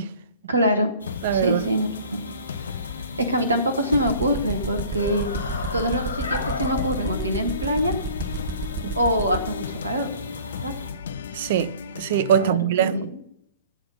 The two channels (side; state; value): both; inverted; correlation -0.47